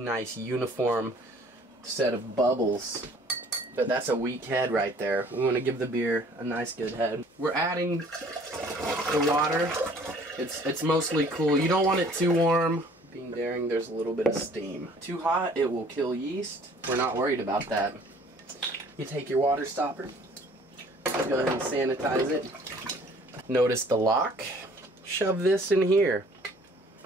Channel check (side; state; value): both; normal; correlation 0.55